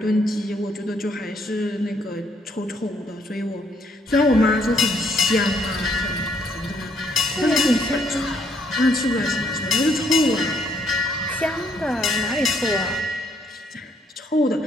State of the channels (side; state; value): both; normal; correlation 0.69